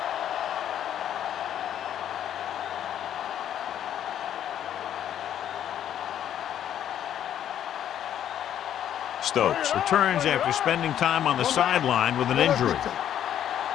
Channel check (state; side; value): quieter; right; 10.4 dB